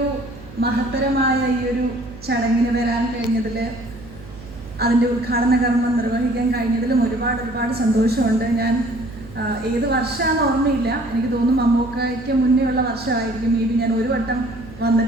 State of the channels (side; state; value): right; noise; hum, 17 dB below the sound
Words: മഹത്തരമായ ഈ ഒരു ചടങ്ങിന് വരാൻ കഴിഞ്ഞതിൽ, അതിൻ്റെ ഉദ്ഘാടന കർമ്മം നിർവഹിക്കാൻ കഴിഞ്ഞതിലും ഒരുപാട് സന്തോഷമുണ്ട്. ഞാൻ ഏത് വർഷമാണെന്ന് ഓർമ്മയില്ല, എനിക്ക് തോന്നുന്നു മമ്മൂക്കയ്ക്ക് മുന്നേ ഉള്ള വർഷമായിരിക്കും. മേ ബി ഞാൻ ഒരു വട്ടം